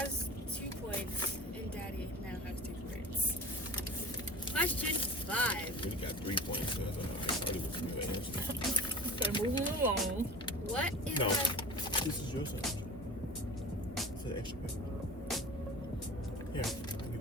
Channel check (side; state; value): both; normal; correlation 0.37